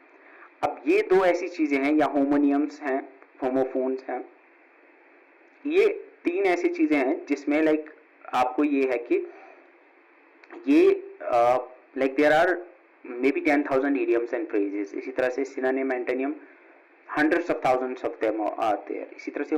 अब ये दो ऐसी चीजें हैं, या होमोनियम्स हैं, होमोफोन्स हैं, ये तीन ऐसी चीजें हैं जिसमें लाइक आपको ये है कि ये like there are may be 10,000 idioms and phrases। इसी तरह से synonym, antonym hundreds of thousands of them are there। इसी तरह से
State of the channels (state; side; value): identical; both; correlation 1.00